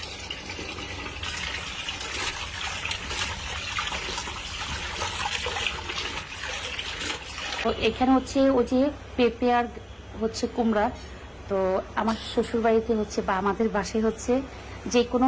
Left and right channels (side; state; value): both; identical; correlation 1.00